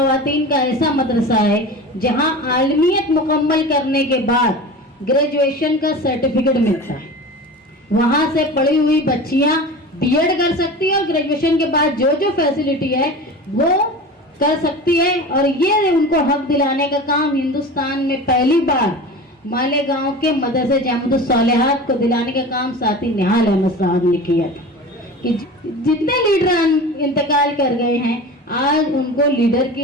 का ऐसा मदरसा है जहां आलमियत मुकम्मल करने के बाद ग्रेजुएशन का सर्टिफिकेट मिलता है। वहां से पढ़ी हुई बच्चियां बीएड कर सकती है और ग्रेजुएशन के बाद जो जो फैसिलिटी है वो कर सकती है। और ये उनको हक दिलाने का काम हिंदुस्तान में पहली बार मालेगांव के मदरसे जामिअतुस सालिहात को दिलाने का काम साथी निहाल अहमद साहब ने किया था। कि जितने लीडर इंतकाल कर गए हैं आज उनको लीडर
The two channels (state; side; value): normal; both; correlation 0.33